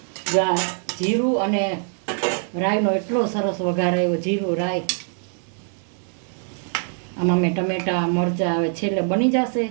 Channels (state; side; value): silent; left; 56 dB below the other